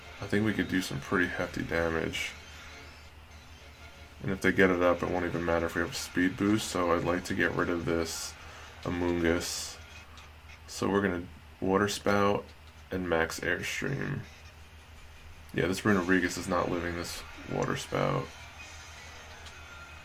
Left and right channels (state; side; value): identical; both; correlation 1.00